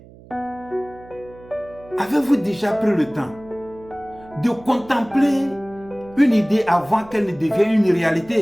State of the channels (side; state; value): right; noise; hum, 22 dB below the sound